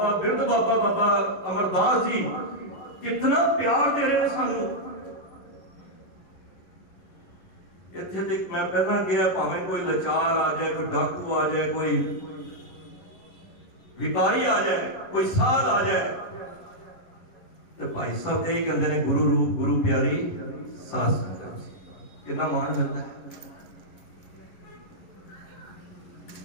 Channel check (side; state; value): right; late; 11 ms